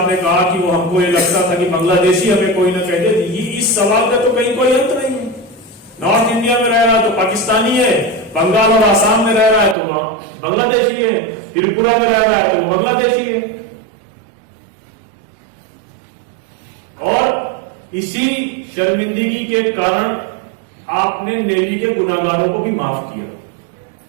कहा कि वो हमको ये लगता था कि बांग्लादेशी हमें कोई ना कह दे, इस सवाल का तो कहीं कोई अंत नहीं है। नॉर्थ इंडिया में रह रहा है तो पाकिस्तानी है, बंगाल और आसाम में रह रहा है तो बांग्लादेशी है, त्रिपुरा में रह रहा है तो बांग्लादेशी है। और इसी शर्मिंदगी के कारण आपने नेली के गुनाहगारों को भी माफ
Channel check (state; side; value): drops out; left; at 9.8 s